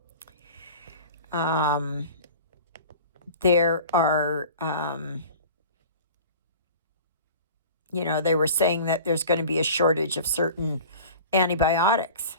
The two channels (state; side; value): inverted; both; correlation -0.40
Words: There are, they were saying that there's going to be a shortage of certain antibiotics,